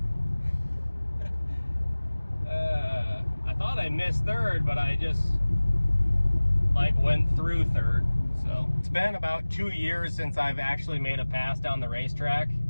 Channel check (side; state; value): both; inverted; correlation -1.00